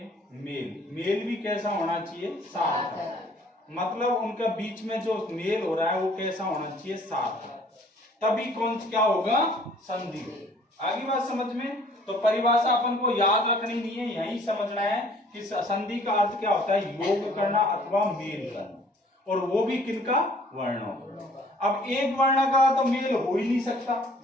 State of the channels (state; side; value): normal; both; correlation 0.56